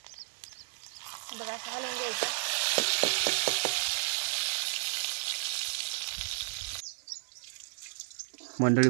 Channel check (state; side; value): silent; left; 56 dB below the other